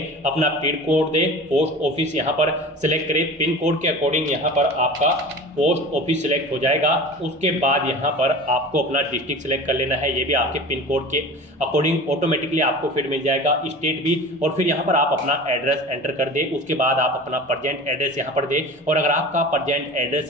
अपना पिन कोड दे, पोस्ट ऑफिस यहाँ पर सिलेक्ट करें। पिन कोड के अकॉर्डिंग यहाँ पर आपका पोस्ट ऑफिस सिलेक्ट हो जाएगा। उसके बाद यहाँ पर आपको अपना डिस्ट्रिक्ट सिलेक्ट कर लेना है, ये भी आपके पिन कोड के अकॉर्डिंग ऑटोमेटिकली आपको फिर मिल जाएगा, स्टेट भी। और फिर यहाँ पर आप अपना एड्रेस एंटर कर दे। उसके बाद आप अपना प्रेजेंट एड्रेस यहाँ पर दे, और अगर आपका प्रेजेंट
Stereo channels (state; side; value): normal; both; correlation 0.36